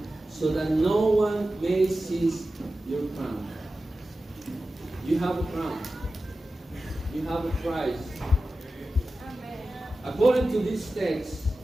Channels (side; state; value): both; normal; correlation 0.94